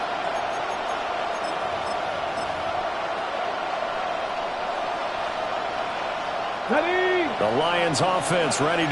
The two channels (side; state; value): both; identical; correlation 1.00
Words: The Lions offense ready